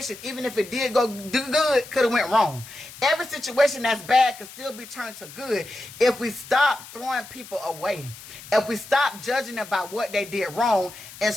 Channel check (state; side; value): noise; left; hiss, 16 dB below the sound